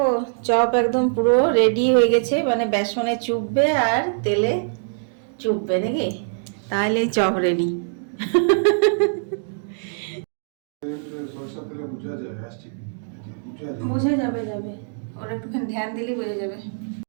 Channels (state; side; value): silent; left; digital silence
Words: চপ একদম পুরো রেডি হয়ে গেছে, মানে বেসনে চুববে আর তেলে চুববে নাকি, তাহলে চপ রেডি। বোঝা যাবে, ওরা একটুখানি ধ্যান দিলেই বোঝা যাবে।